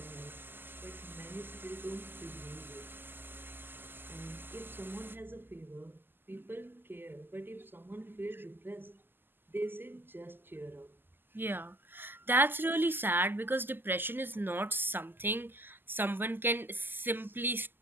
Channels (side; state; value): left; late; 0.095 ms